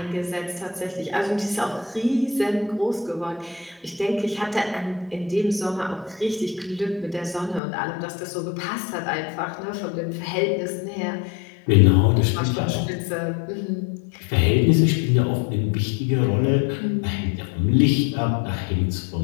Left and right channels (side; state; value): right; drops out; at 7.6 s